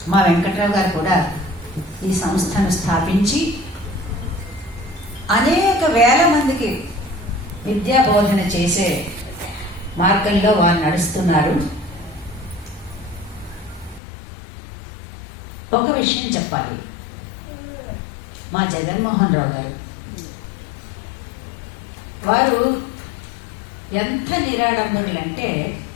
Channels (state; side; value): drops out; right; at 14.0 s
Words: మా వెంకట్రావు గారు కూడా ఈ సంస్థను స్థాపించి అనేక వేల మందికి విద్యా బోధన చేసే మార్గంలో వారు నడుస్తున్నారు. ఒక విషయం చెప్పాలి, మా జగన్మోహన్ రావు గారు వారు ఎంత నిరాడంబరులంటే